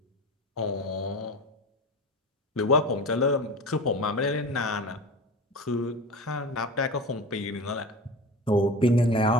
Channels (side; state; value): both; normal; correlation 0.31